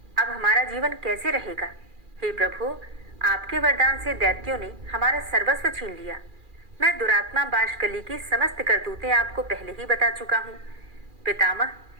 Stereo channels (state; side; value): late; left; 2.4 ms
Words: अब हमारा जीवन कैसे रहेगा? हे प्रभु, आपके वरदान से दैत्यों ने हमारा सर्वस्व छीन लिया। मैं दुरात्मा बाष्कली की समस्त करतूतें आपको पहले ही बता चुका हूँ। पितामह,